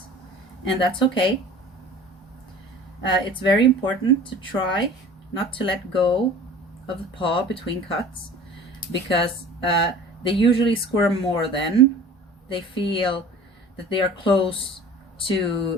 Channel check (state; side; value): normal; both; correlation 0.43